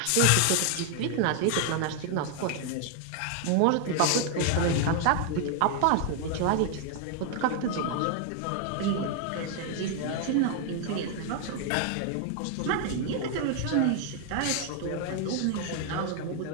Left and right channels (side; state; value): both; different; correlation 0.00